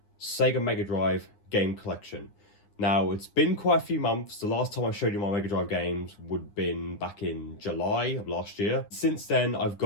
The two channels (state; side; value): late; right; 9.8 ms